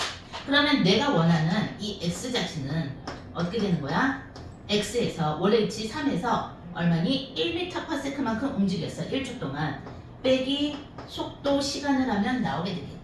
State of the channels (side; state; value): both; identical; correlation 1.00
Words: 그러면 내가 원하는 이 X 자체는 어떻게 되는 거야? X에서 원래 위치 3에서 얼마니? 1m/s만큼 움직였어. 1초 동안. 빼기 속도 시간을 하면 나오게